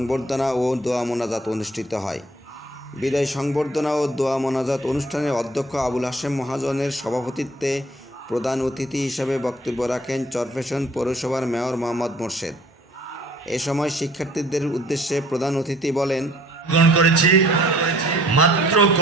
ও দোয়া মোনাজাত অনুষ্ঠিত হয়। বিদায় সংবর্ধনা ও দোয়া মোনাজাত অনুষ্ঠানে অধ্যক্ষ আবুল হাশেম মহাজনের সভাপতিত্বে প্রধান অতিথি হিসেবে বক্তব্য রাখেন চরফ্যাশন পৌরসভার মেয়র মোহাম্মদ মোর্শেদ। এ সময় শিক্ষার্থীদের উদ্দেশ্যে প্রধান অতিথি বলেন, গ্রহণ করেছি মাত্র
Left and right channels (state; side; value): normal; both; correlation 0.56